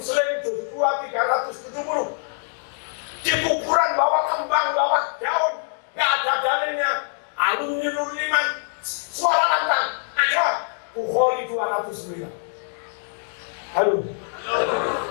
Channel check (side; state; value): right; silent; 63 dB below the other